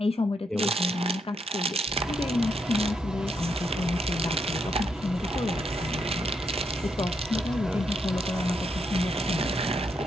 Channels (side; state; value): both; normal; correlation 0.79